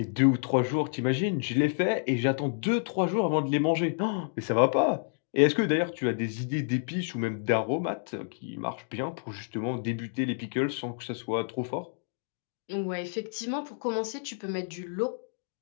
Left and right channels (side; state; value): right; silent; digital silence